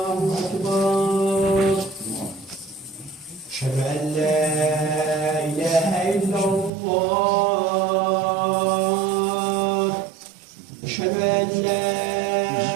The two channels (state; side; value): drops out; left; at 6.7 s